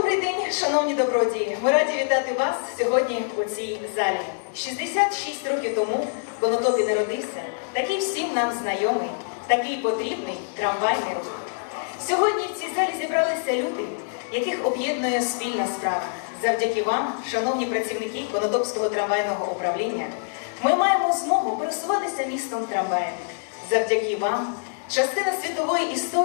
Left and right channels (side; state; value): right; silent; digital silence